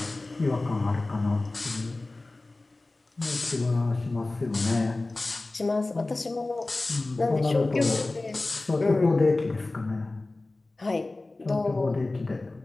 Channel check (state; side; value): quieter; right; 3.1 dB